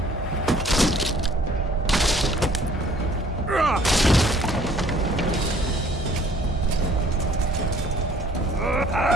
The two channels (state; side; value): normal; both; correlation 0.57